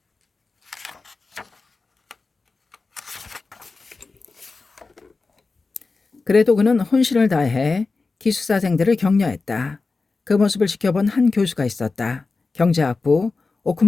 그래도 그는 혼신을 다해 기숙사생들을 격려했다. 그 모습을 지켜본 한 교수가 있었다. 경제학부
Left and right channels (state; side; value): quieter; right; 4.0 dB